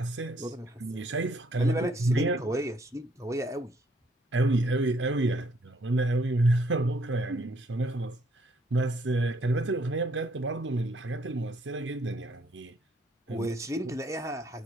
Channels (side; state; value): both; normal; correlation 0.67